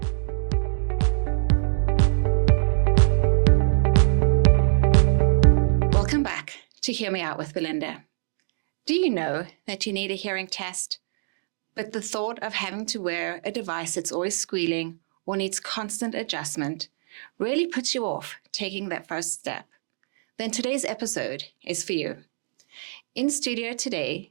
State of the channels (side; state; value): left; silent; digital silence